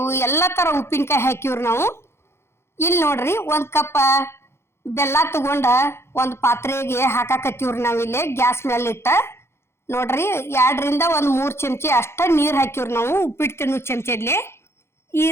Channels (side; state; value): right; late; 0.12 ms